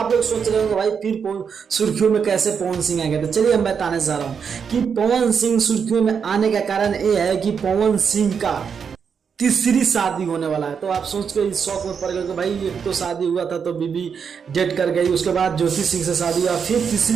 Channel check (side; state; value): left; quieter; 6.6 dB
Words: लोग सोच रहे हो भाई फिर सुर्खियों में कैसे पवन सिंह आ गए। तो चलिए हम बताने जा रहा हूँ कि पवन सिंह सुर्खियों में आने का कारण ये है कि पवन सिंह का तीसरी शादी होने वाला है। तो आप सोच के इस शौक में पड़ गए कि भाई एक तो शादी हुआ था तो बीबी डेट कर गई, उसके बाद ज्योति सिंह से शादी हुआ, फिर